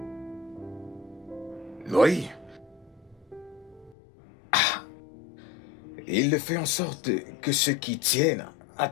Oui. Ah. Il le fait en sorte que ceux qui tiennent à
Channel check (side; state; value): right; drops out; at 4.0 s